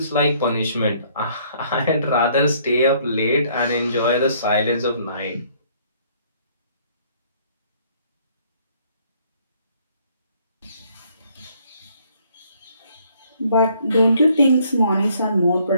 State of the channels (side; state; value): both; inverted; correlation -0.63